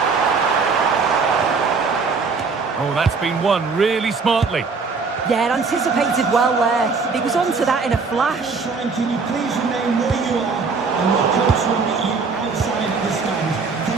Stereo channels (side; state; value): left; quieter; 4.7 dB